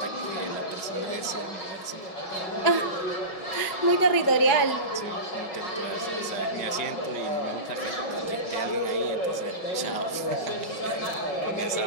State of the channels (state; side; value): late; right; 5.4 ms